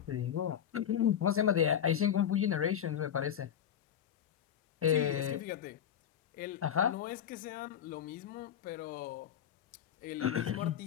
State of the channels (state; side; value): quieter; right; 9.4 dB